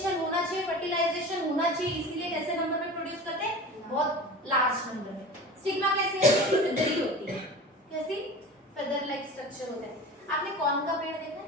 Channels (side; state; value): both; normal; correlation 0.35